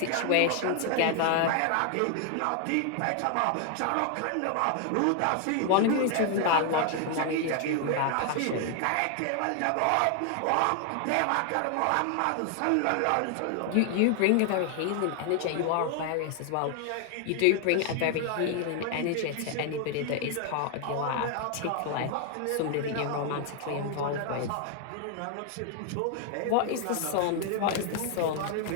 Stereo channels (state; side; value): different; both; correlation 0.00